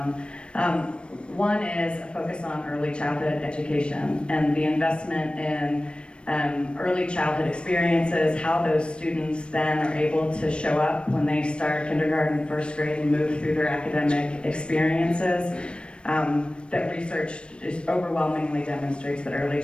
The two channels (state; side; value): late; right; 0.057 ms